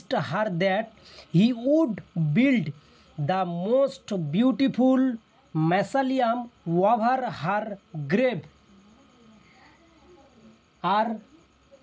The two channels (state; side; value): identical; both; correlation 1.00